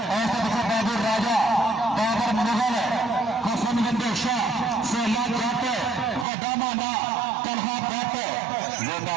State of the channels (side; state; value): left; drops out; at 6.2 s